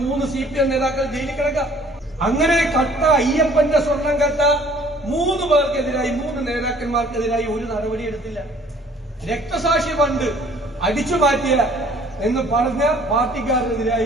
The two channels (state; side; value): normal; both; correlation 0.55